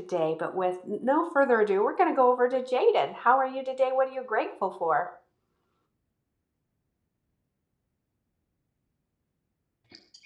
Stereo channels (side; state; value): both; identical; correlation 1.00